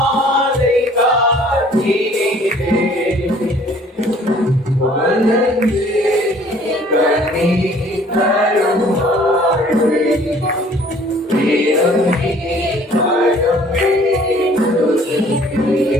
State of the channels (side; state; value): both; normal; correlation 0.55